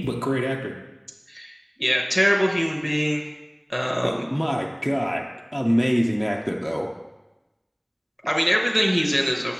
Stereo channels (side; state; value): both; identical; correlation 1.00